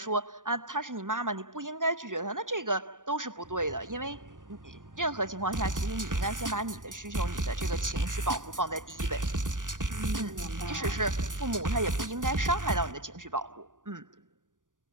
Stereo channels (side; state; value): left; late; 0.88 ms